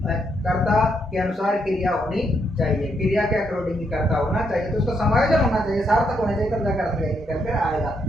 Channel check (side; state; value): both; normal; correlation 0.76